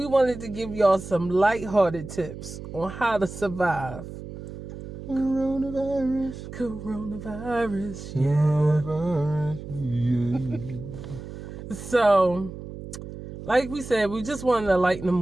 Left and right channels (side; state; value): right; noise; hum, 11 dB below the sound